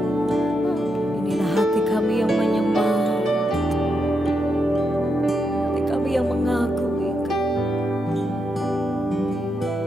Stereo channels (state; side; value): normal; both; correlation 0.83